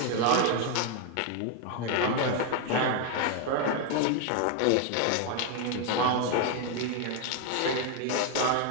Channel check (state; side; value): different; both; correlation 0.01